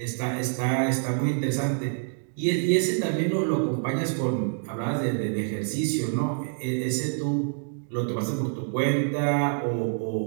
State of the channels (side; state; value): left; silent; digital silence